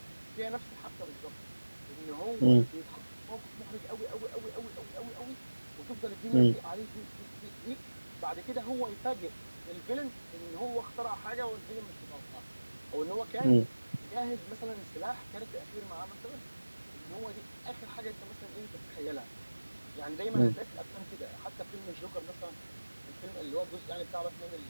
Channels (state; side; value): inverted; both; correlation -1.00